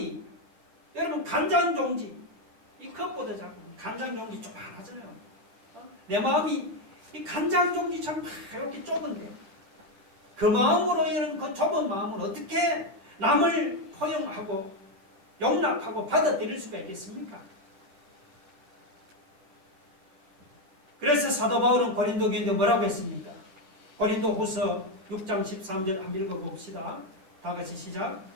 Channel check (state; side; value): late; left; 10 ms